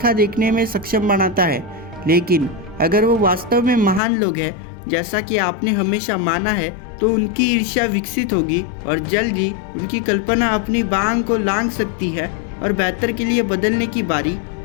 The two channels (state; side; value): drops out; right; at 4.0 s